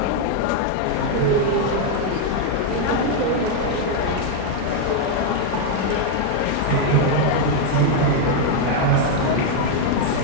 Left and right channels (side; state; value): both; different; correlation 0.00